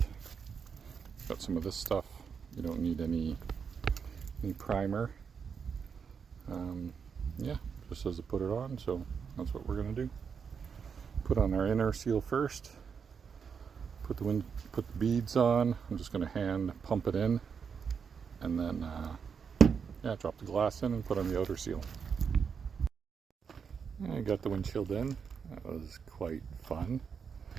Got some of this stuff. You don't need any primer. Yeah, just says to put it on, so that's what we're going to do. Put on our inner seal first. Put the beads on. I'm just going to hand pump it in, and then yeah, drop the glass in and put on the outer seal. I got the windshield in. That was quite fun.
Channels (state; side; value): quieter; left; 6.4 dB